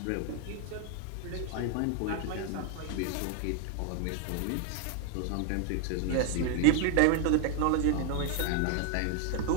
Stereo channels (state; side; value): different; both; correlation 0.01